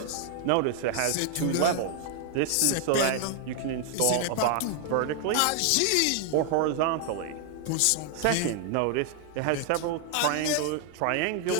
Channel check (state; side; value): different; both; correlation 0.00